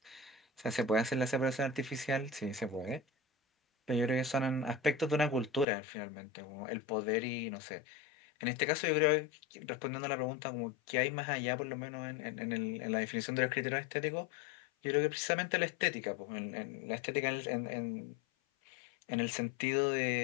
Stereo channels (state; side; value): drops out; right; at 5.7 s